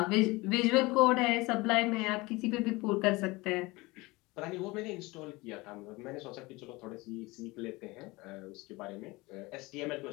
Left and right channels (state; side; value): quieter; right; 22.6 dB